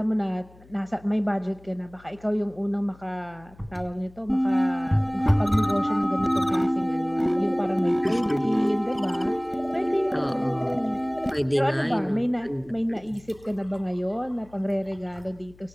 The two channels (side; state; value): left; noise; hum, 25 dB below the sound